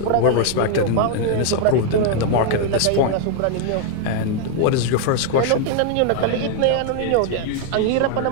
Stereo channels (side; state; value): both; different; correlation 0.00